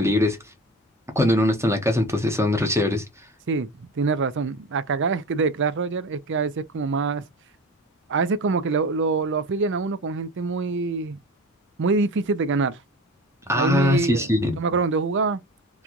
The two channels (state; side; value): normal; both; correlation 0.32